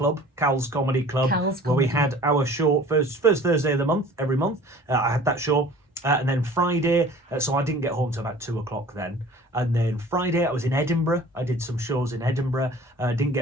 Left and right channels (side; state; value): both; normal; correlation 0.47